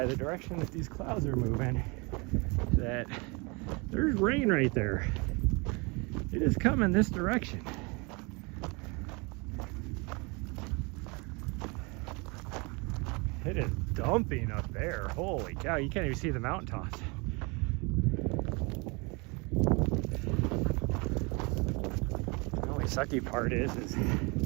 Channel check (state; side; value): quieter; left; 29.0 dB